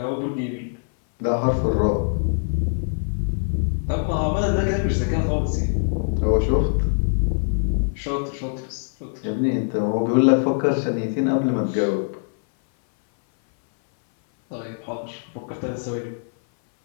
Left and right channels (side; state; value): right; silent; 60 dB below the other